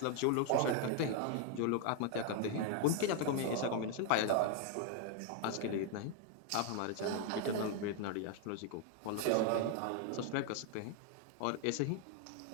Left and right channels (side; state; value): both; different; correlation 0.00